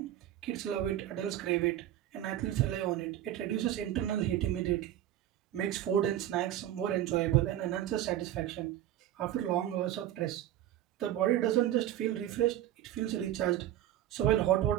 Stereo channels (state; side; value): quieter; left; 12.4 dB